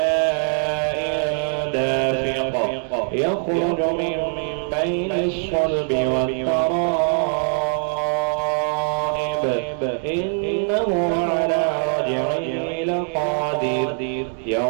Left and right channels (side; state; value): left; silent; 56 dB below the other